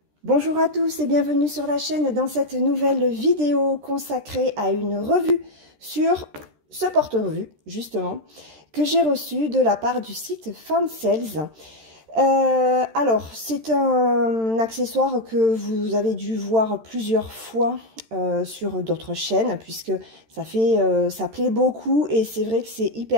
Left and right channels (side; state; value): left; late; 13 ms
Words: Bonjour à tous et bienvenue sur la chaîne dans cette nouvelle vidéo consacrée à une revue sur ce porte-revue, justement, que j'ai reçu de la part du site Fansales. Alors, c'est un accessoire que vous avez dû voir plusieurs fois sur d'autres chaînes, puisque ça plaît beaucoup et c'est vrai que c'est